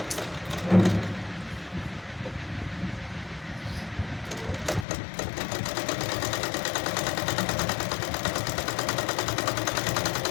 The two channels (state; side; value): drops out; right; at 4.9 s